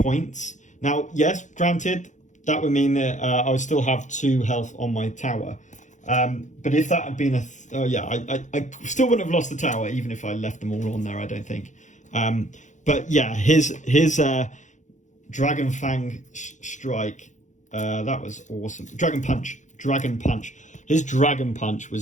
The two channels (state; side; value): late; right; 0.35 ms